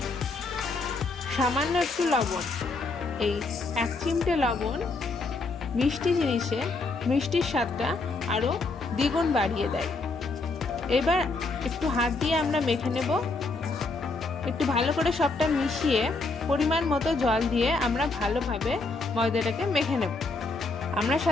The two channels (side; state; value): right; quieter; 3.6 dB